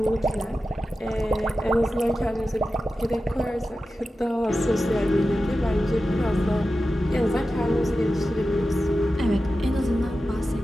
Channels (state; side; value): normal; both; correlation 0.93